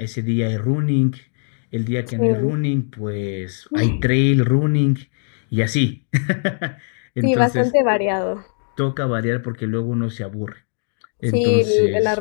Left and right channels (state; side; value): silent; right; digital silence